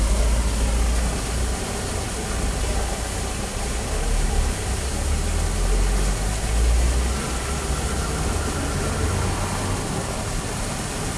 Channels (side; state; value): both; identical; correlation 1.00